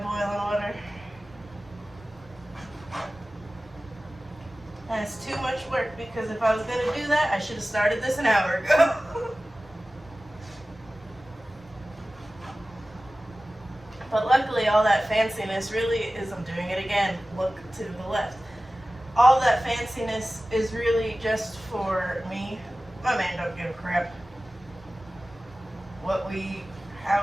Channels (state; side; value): normal; both; correlation 0.96